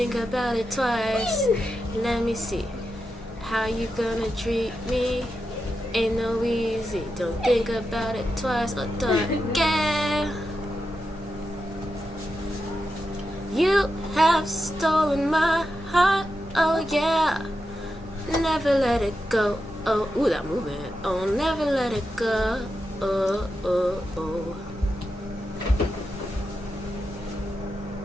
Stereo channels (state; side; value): normal; both; correlation 0.88